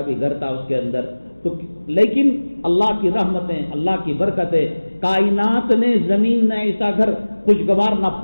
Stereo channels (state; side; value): inverted; both; correlation -1.00